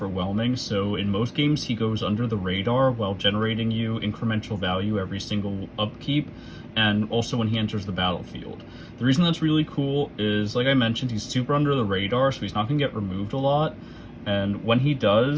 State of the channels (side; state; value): both; identical; correlation 1.00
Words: so in most games he goes under the radar while generating you incremental value every single upkeep, and also when he enters the battlefield. The reason that's really cool is, like I mentioned, he's super under the radar, so he's not going to get removed a lot. And when he